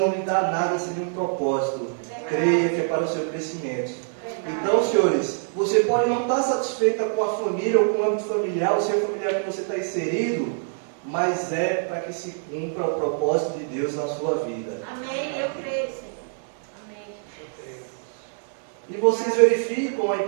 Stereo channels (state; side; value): silent; left; digital silence